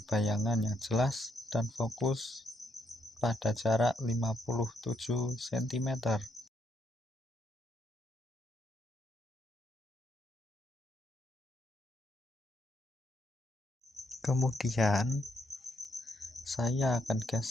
bayangan yang jelas dan fokus pada jarak 57 cm. Kemudian saya akan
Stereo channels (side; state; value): both; normal; correlation 0.76